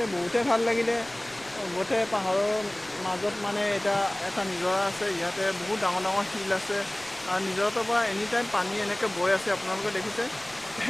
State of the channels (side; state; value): left; noise; rumble, 25 dB below the sound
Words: বহুতে ভাল লাগিলে। গোটেই পাহাৰৰ মাজত মানে এটা নিজৰা আছে। ইয়াতে বহুত ডাঙৰ ডাঙৰ শিল আছে আৰু নিজৰাটোৰ পৰা এনি টাইম পানী এনেকৈ বৈ আছে। আপোনালোকে দেখিছে